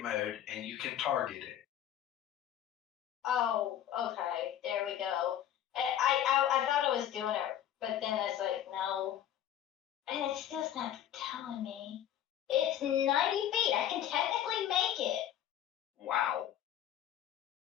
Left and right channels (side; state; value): right; quieter; 11.0 dB